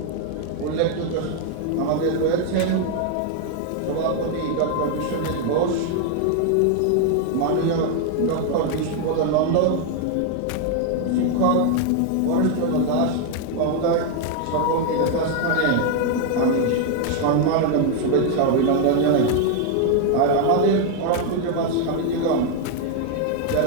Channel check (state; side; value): different; both; correlation 0.01